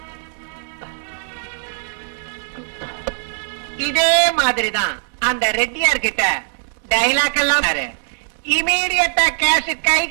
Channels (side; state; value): left; silent; digital silence